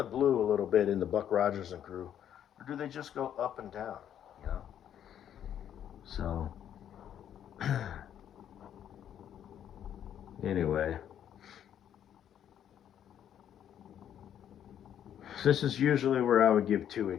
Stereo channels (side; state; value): right; quieter; 9.9 dB